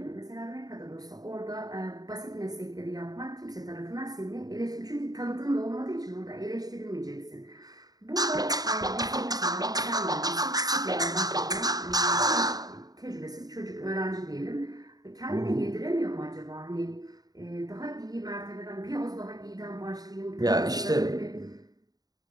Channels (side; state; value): left; late; 0.18 ms